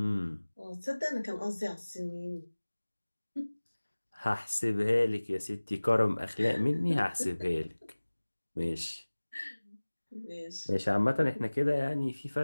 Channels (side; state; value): both; inverted; correlation -1.00